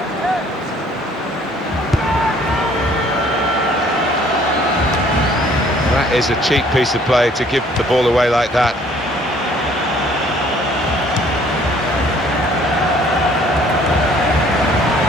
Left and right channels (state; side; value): normal; both; correlation 0.58